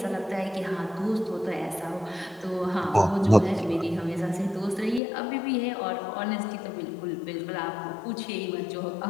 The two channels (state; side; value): drops out; right; at 5.0 s